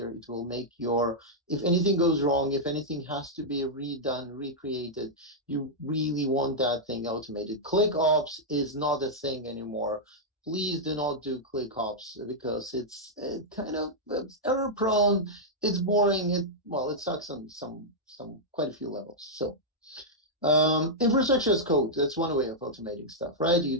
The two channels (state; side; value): normal; both; correlation -0.07